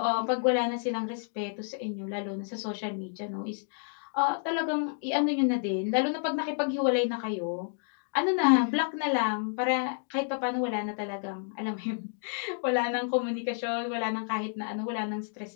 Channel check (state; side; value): silent; right; digital silence